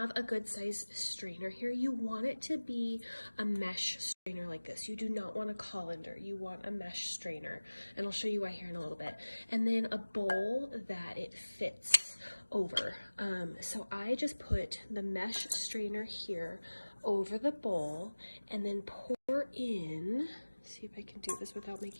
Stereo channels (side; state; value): both; inverted; correlation -1.00